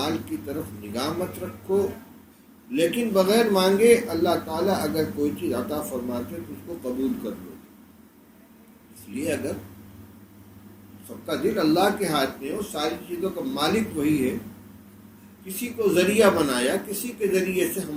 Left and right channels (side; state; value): both; identical; correlation 1.00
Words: کی طرف نگاہ مت رکھو، لیکن بغیر مانگے اللہ تعالیٰ اگر کوئی چیز عطا فرماتے تو اس کو قبول کر لو۔ اس لیے اگر سب کا دل اللہ کے ہاتھ میں ہو، ساری چیزوں کا مالک وہی ہے، کسی کو ذریعہ بنایا، کسی کے ذریعے سے